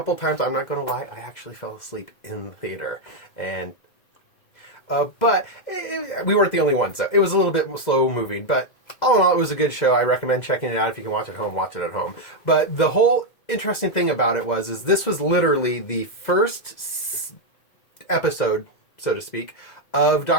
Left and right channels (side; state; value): right; late; 2.2 ms